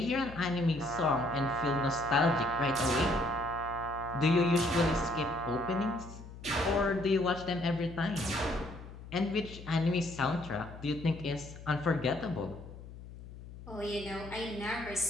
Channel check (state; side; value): noise; left; hum, 15 dB below the sound